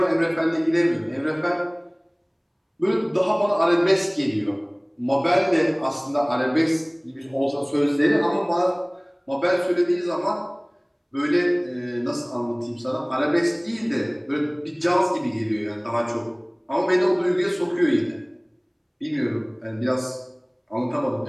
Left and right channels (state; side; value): identical; both; correlation 1.00